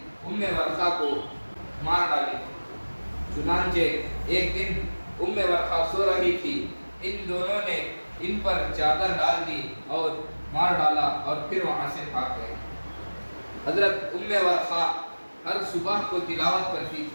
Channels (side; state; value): both; inverted; correlation -1.00